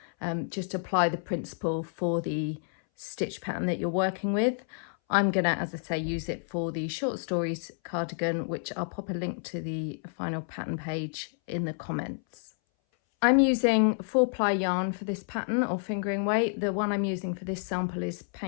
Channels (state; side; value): silent; right; 58 dB below the other